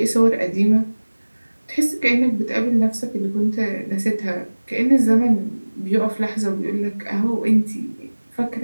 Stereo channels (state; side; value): inverted; both; correlation -1.00